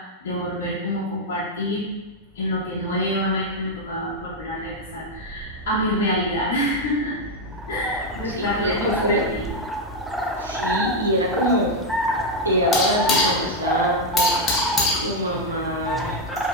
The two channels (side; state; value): both; normal; correlation 0.03